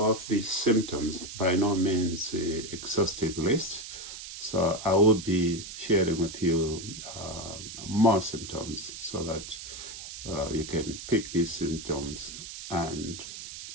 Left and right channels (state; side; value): noise; right; hiss, 11 dB below the sound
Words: the symptoms, by no means an exhaustive list. So I will be sharing with you more symptoms so that you can pick these symptoms and